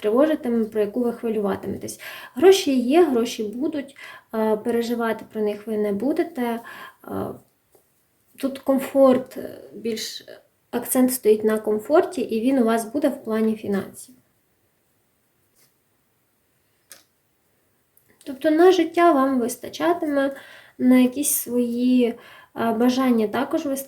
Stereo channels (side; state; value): both; identical; correlation 1.00